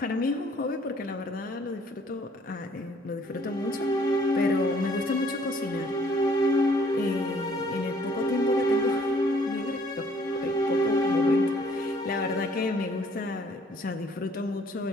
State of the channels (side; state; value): both; normal; correlation 0.61